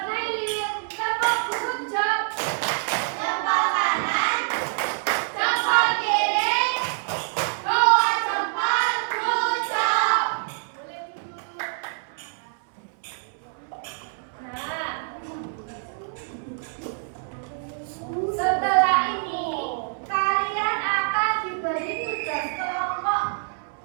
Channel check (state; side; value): silent; left; 61 dB below the other